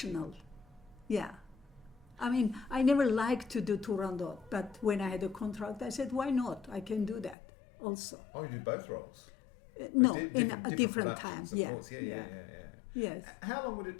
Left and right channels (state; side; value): drops out; right; at 7.4 s